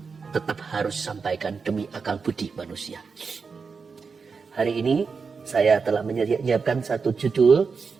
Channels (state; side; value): quieter; left; 5.1 dB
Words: tetap harus sampaikan demi akal budi manusia. Hari ini saya telah menyiapkan satu judul,